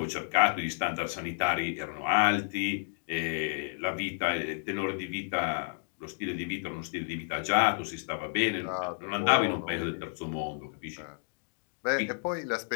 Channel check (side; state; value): right; silent; digital silence